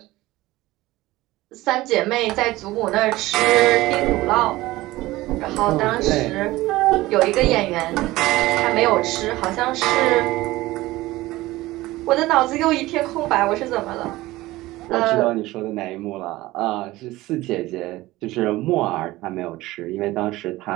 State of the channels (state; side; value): quieter; left; 18.3 dB